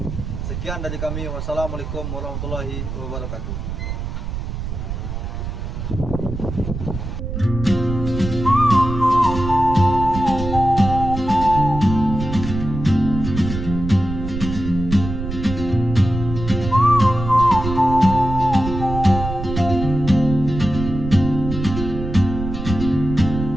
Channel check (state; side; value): noise; right; rumble, 6 dB below the sound